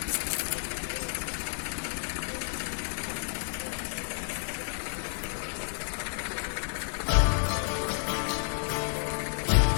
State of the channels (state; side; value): silent; right; 57 dB below the other